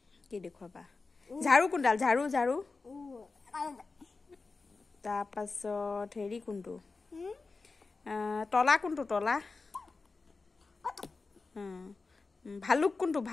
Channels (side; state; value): right; quieter; 4.0 dB